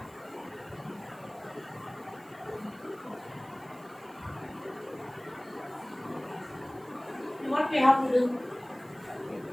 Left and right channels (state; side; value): noise; right; hiss, 25 dB below the sound